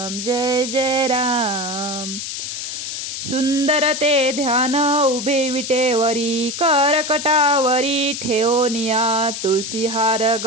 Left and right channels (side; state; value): left; noise; hiss, 6 dB below the sound